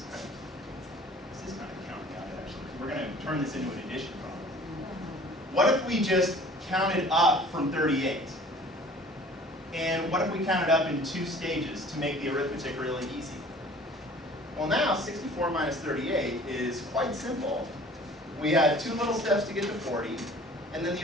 kind of counting out actually. We're going to turn this into an addition problem. What if we just counted up from 38? And what if we counted up in 2 stages to make the arithmetic really easy? Well, now 64 minus 38 is quite simple. We had 2 little steps to get to 40, and then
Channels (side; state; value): both; normal; correlation 0.48